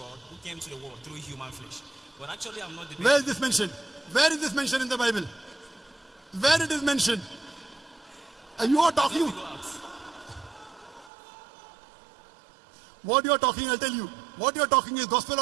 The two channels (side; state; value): left; drops out; at 11.1 s